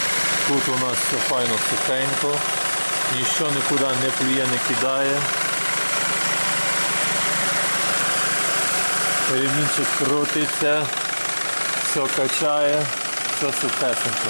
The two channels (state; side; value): inverted; both; correlation -1.00